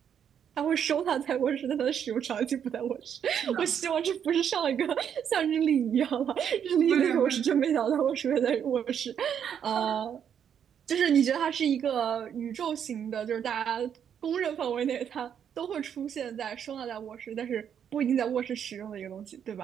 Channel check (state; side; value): quieter; left; 8.5 dB